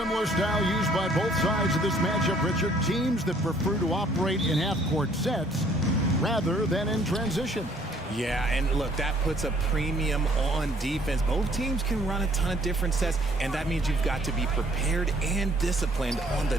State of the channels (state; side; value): normal; both; correlation 0.61